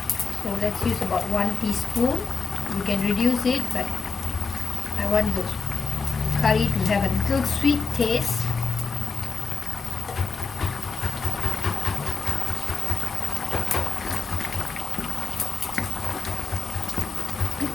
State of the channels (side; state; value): right; quieter; 4.9 dB